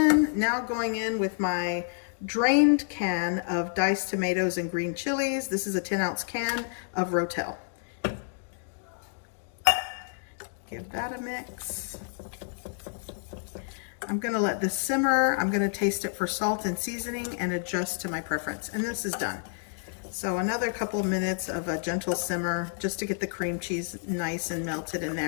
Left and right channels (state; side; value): silent; right; digital silence